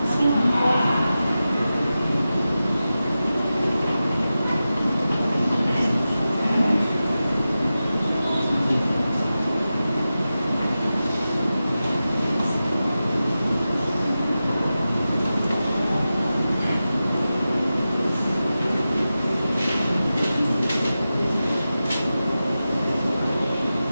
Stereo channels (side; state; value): both; inverted; correlation -0.93